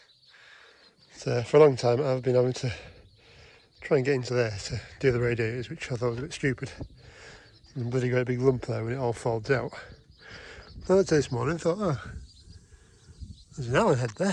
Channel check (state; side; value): identical; both; correlation 1.00